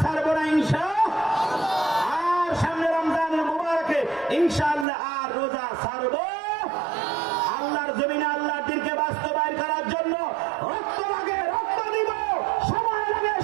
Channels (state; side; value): drops out; left; at 4.9 s